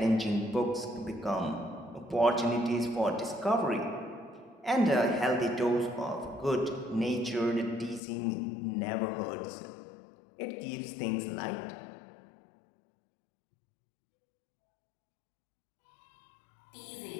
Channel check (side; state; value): right; drops out; at 8.0 s